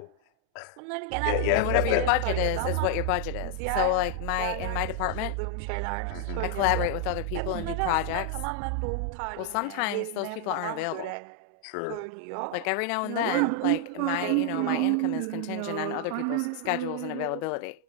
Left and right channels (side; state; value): both; different; correlation 0.00